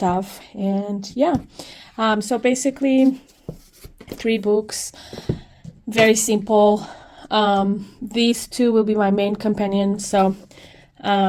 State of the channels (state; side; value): identical; both; correlation 1.00